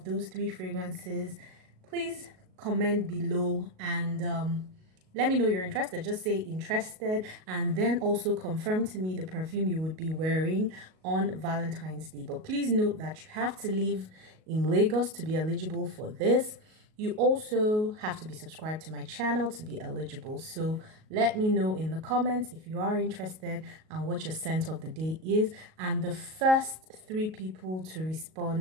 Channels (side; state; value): left; late; 38 ms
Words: those 3 fragrances, please comment below and let me know you're interested. Just say interested, and then also confirm to me the perfume you would be wearing on Valentine's Day. But please note that you have to live in Lagos to be eligible for this. You also have to be subscribed to my channel to be eligible. So let me know in the comments if you are interested and what your scent of the day is. And the first 3 people to